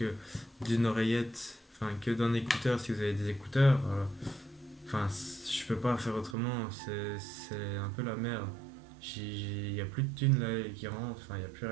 d'une oreillette, enfin que d'un écouteur si vous avez des écouteurs. Enfin, je peux pas faire autrement, c'est un peu la merde. Il n'y a plus de thunes là qui rentrent, enfin il n'y a plus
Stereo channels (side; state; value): left; drops out; at 6.4 s